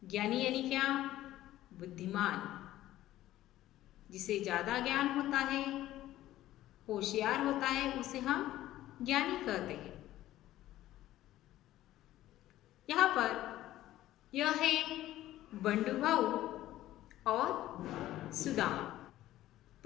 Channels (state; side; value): quieter; right; 14.5 dB